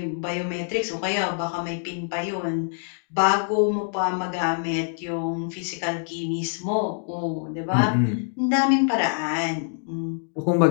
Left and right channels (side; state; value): right; silent; digital silence